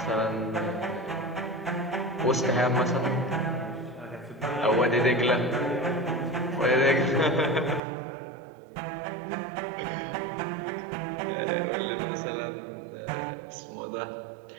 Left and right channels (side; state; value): left; drops out; at 7.8 s